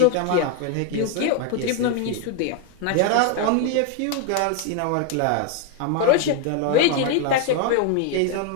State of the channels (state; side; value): different; both; correlation 0.01